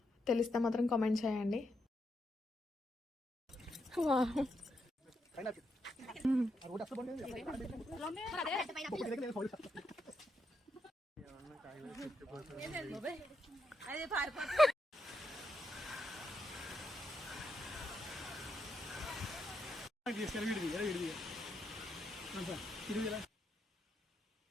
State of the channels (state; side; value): normal; both; correlation 0.81